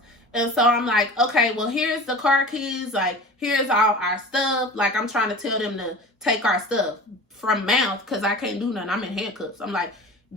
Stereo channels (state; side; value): normal; both; correlation 0.36